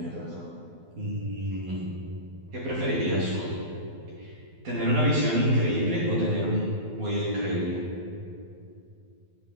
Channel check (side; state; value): left; late; 12 ms